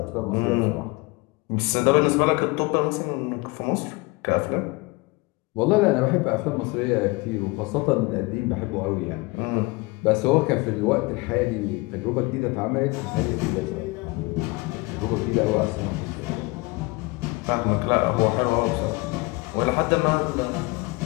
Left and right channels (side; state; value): right; quieter; 24.8 dB